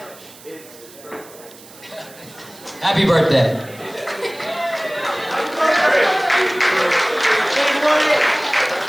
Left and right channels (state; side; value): noise; right; hiss, 21 dB below the sound